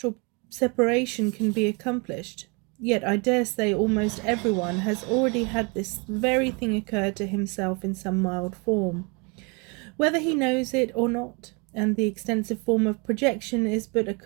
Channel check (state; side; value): quieter; left; 31.1 dB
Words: separation can be accomplished, yet I dare say almost everyone has already had this very thing occur to himself in some mild form, whether he knows it or not, and the extensive form of projection is but a